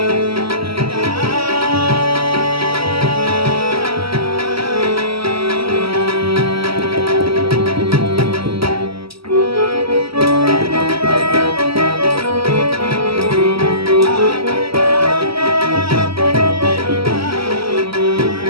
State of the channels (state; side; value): late; left; 0.75 ms